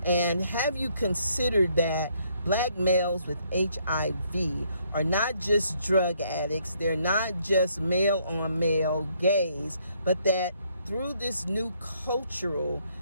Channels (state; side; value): inverted; both; correlation -0.69